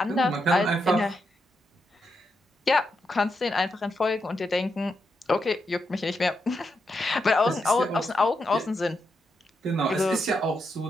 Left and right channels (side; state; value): both; normal; correlation 0.83